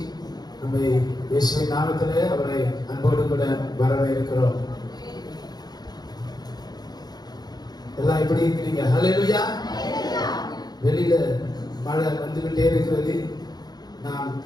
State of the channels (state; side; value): late; right; 0.19 ms